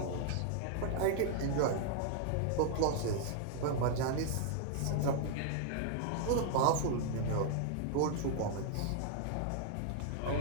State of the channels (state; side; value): different; both; correlation 0.00